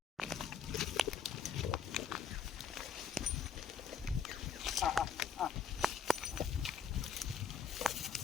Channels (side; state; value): right; quieter; 6.1 dB